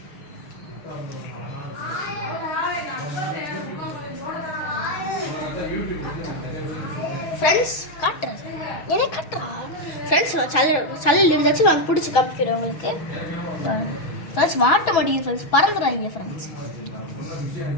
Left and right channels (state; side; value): late; right; 6.2 ms